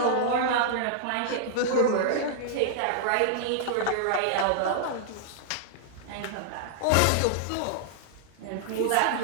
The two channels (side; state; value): both; different; correlation -0.01